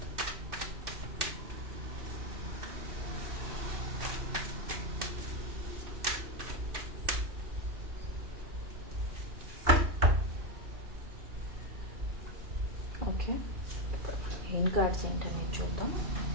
Okay, main cards ఏంటని చూద్దాం.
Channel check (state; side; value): late; left; 2.6 ms